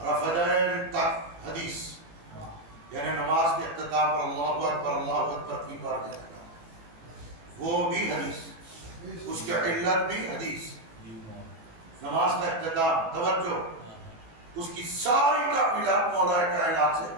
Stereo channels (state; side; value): late; left; 18 ms